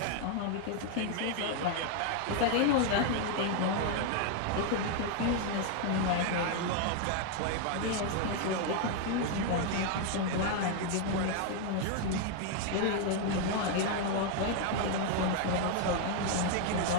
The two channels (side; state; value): both; different; correlation 0.00